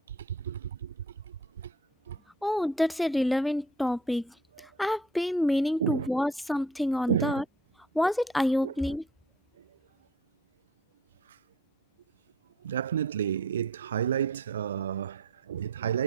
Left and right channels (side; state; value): both; normal; correlation 0.52